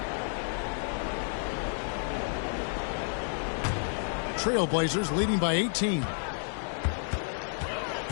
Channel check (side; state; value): right; silent; digital silence